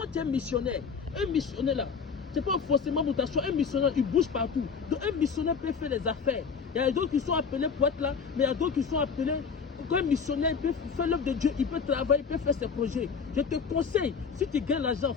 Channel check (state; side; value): quieter; right; 5.9 dB